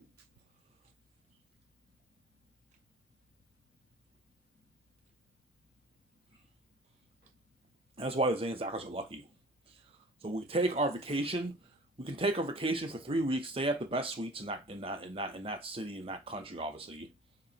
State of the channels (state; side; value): normal; both; correlation 0.44